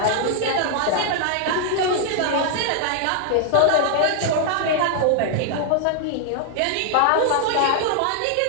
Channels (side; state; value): both; different; correlation 0.00